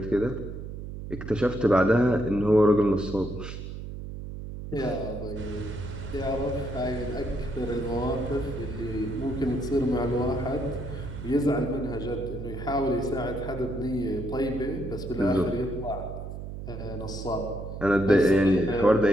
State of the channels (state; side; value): noise; right; hum, 9 dB below the sound